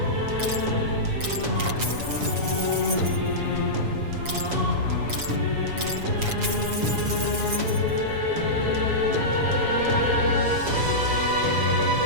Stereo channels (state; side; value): late; left; 7.1 ms